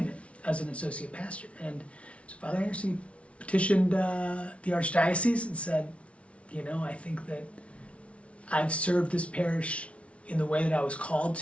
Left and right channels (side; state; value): right; late; 0.062 ms